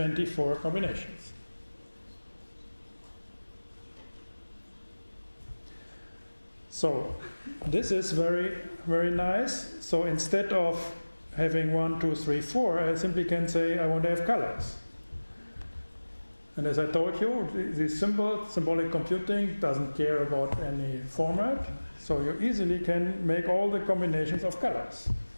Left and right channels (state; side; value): inverted; both; correlation -1.00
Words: combinations. So this is very, very nice. So instead of having 1, 2, 3, 4, I simply can say I want to have colors. And as I told you, this symbolic computing doesn't care about any format, so you easily can make all the combinations of colors.